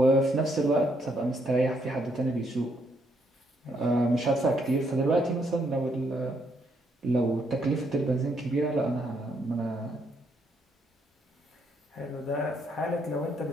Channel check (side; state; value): both; normal; correlation 0.74